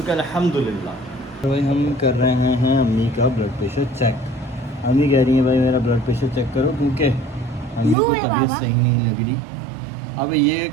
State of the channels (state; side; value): drops out; left; at 8.0 s